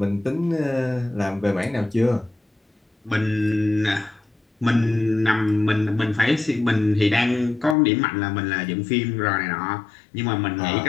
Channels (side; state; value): right; drops out; at 7.8 s